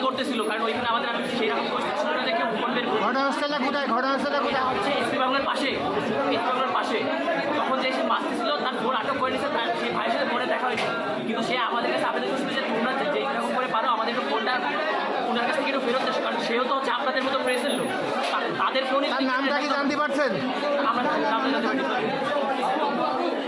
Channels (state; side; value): identical; both; correlation 1.00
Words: করতেছিল, কারণ ওইখানে আমাদের সেই রকম পরিস্থিতি ছিল না যে কেউ বলবেন। ঘটনাস্থলটা কোথায়? হচ্ছে এসপি বাংলার পাশে। তখন যে সে মারতেছিল তার ফোন আটক করে নিচ্ছে, তার সেই ভাইয়ের সাথে ফোনে দেখা হয়েছে, কিন্তু সে আমাদের কাছে আবেদন করছিল যে তোমরা যে এরকম করে পারো আমাদের একটু ফোনটা ওনার কাছ থেকে একটু ফেরত দেয়, কারণ সেও তো হচ্ছে আপনাদের মতো প্রেসের লোক। তাদের ফোনে নামটা কি জানতে পারছেন? আমরা নামটা জানতে পারি।